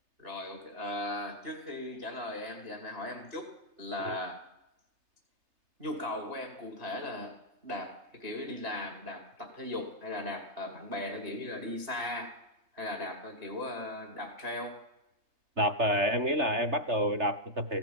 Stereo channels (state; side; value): late; left; 3.3 ms